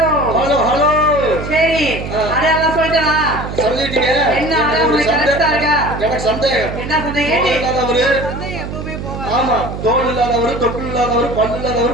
hello hello. சரி, அடையாளம் சொல்லிட்டா? சொல்லிட்டீங்க. என்ன அடையாளம் கரெக்டா இருக்கா? எனக்கு சந்தேகம். என்ன சந்தேகம்? இல்லாதவரு, ஆமா, தோல் இல்லாதவரு, தொப்புள் இல்லாதவரு, பல்லு இல்லாதவரு,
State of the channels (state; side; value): noise; right; hum, 7 dB below the sound